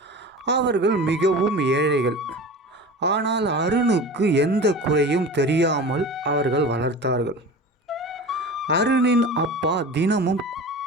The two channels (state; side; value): normal; both; correlation 0.34